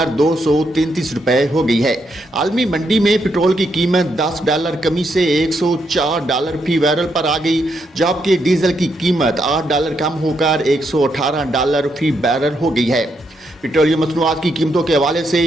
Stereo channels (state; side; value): normal; both; correlation 0.79